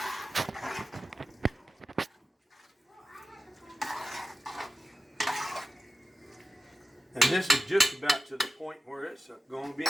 And this is just about to the point where it's going to be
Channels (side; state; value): both; normal; correlation 0.94